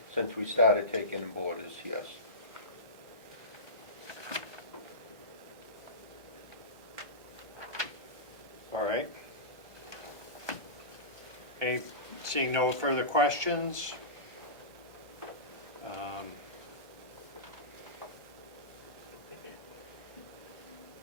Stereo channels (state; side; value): late; left; 1.2 ms